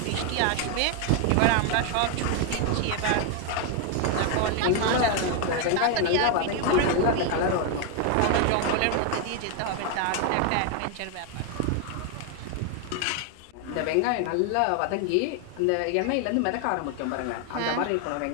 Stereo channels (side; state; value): both; different; correlation 0.01